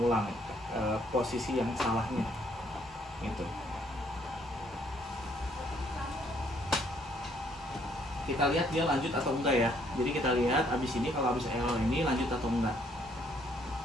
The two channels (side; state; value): both; normal; correlation 0.67